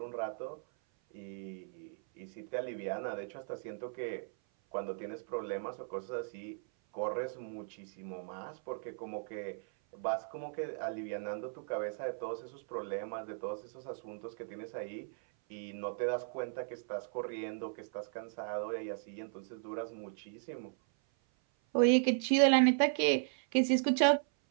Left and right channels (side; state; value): left; silent; 53 dB below the other